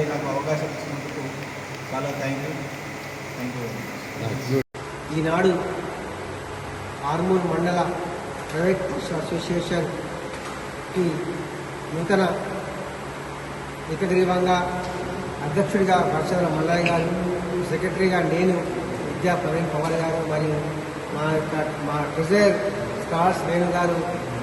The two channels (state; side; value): identical; both; correlation 1.00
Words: నాకు అవకాశం ఇచ్చినందుకు చాలా థ్యాంక్ యూ. ఈనాడు ఆర్మూర్ మండల ప్రైవేట్ అసోసియేషన్కి నూతన ఏకగ్రీవంగా అధ్యక్షుడిగా భరత్చంద్ర మల్లయ్య గారు, సెక్రటరీగా నేను, విద్యా ప్రవీణ్ పవార్ గారు మరియు మా ట్రెజరర్ స్టార్స్ వేణు గారు